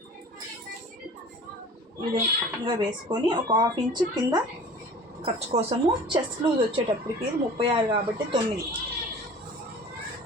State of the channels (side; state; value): both; normal; correlation 0.43